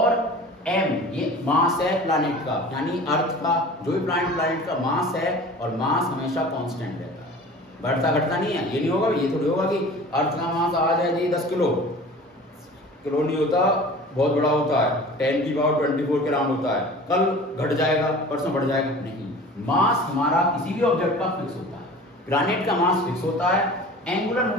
m ये मास है प्लैनेट का, यानी अर्थ का, जो भी प्लैनेट का मास है, और मास हमेशा कांस्टेंट रहता है, बढ़ता घटता नहीं है। ये नहीं होगा, ये थोड़ी होगा कि अर्थ का मास आज है जी 10 किलो नहीं होता, बहुत बड़ा होता है, 10 की पावर 24 के राउंड होता है, कल घट जाएगा परसों बढ़ जाएगा, नहीं। मास हमारा किसी भी ऑब्जेक्ट का फिक्स होता है, प्लैनेट का मास फिक्स होता है, एंगुलर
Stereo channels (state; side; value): normal; both; correlation 0.41